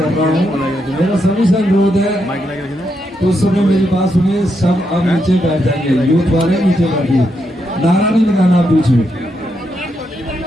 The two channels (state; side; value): normal; both; correlation 0.81